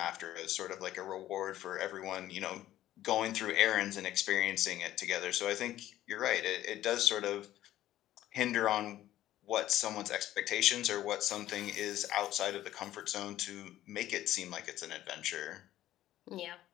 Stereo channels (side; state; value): right; quieter; 13.7 dB